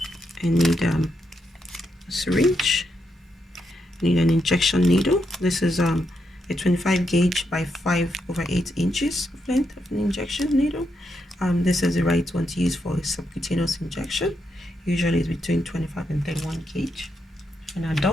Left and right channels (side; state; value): both; normal; correlation 0.82